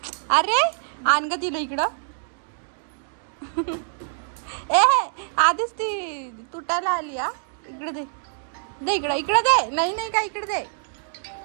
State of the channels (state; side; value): silent; left; digital silence